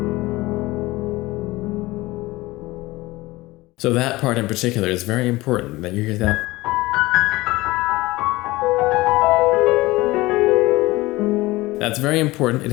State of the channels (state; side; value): quieter; right; 20.0 dB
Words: So that part in particular is very important, that you hear that. That's very important. It